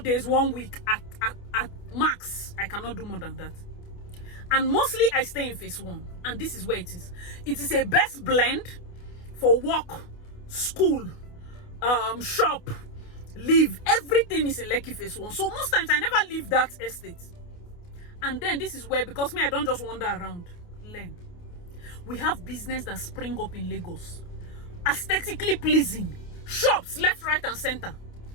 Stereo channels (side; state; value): right; late; 28 ms